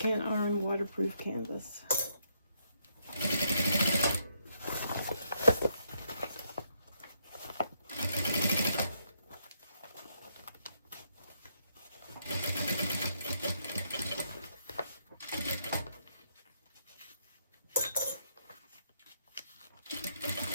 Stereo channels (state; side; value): inverted; both; correlation -0.75